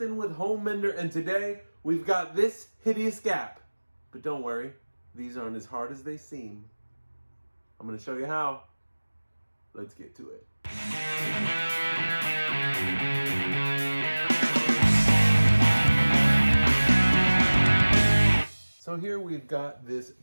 with Homemender, and today we've got this hideous gap. But don't worry, these aren't as hard as they seem. I'm going to show you how. Let's get to it. So here we've got this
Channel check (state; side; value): inverted; both; correlation -1.00